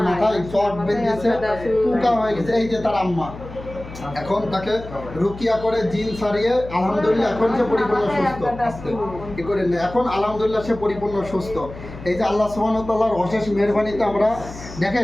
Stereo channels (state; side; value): noise; left; hum, 14 dB below the sound